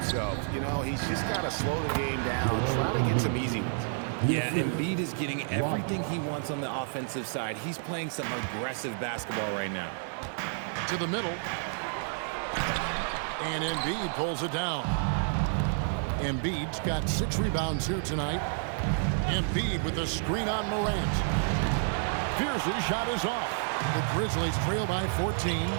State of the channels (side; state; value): left; silent; digital silence